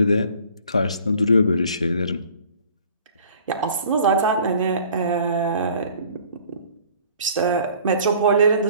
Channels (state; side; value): inverted; both; correlation -0.52